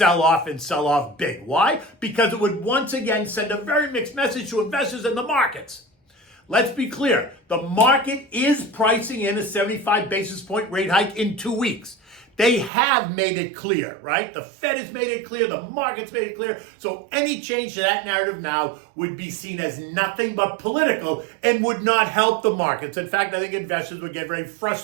off and sell off big. Why? Because it would once again send a very mixed message to investors in the markets. Let's be clear. The market is pricing in a 75 basis point rate hike in 2 weeks. They have made it clear, right? The Fed has made it clear. The market's made it clear. So any change to that narrative now would be seen as nothing but political and would not help the markets. In fact, I think investors would get very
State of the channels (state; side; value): drops out; left; at 12.7 s